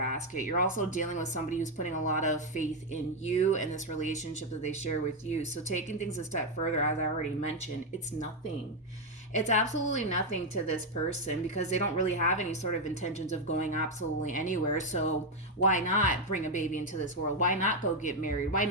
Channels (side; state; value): both; normal; correlation 0.04